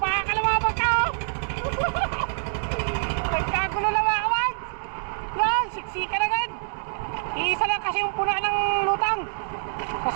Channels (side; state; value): left; silent; digital silence